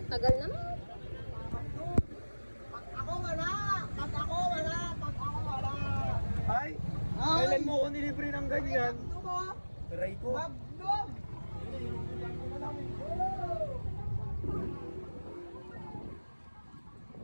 Tagal naman. Pag ako wala! Ay! Kailan mo ako nilibre ng ganyan? Try ko.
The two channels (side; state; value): both; inverted; correlation -1.00